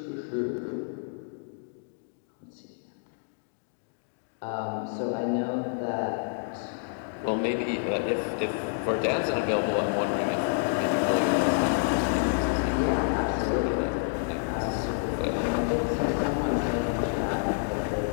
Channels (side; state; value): right; silent; digital silence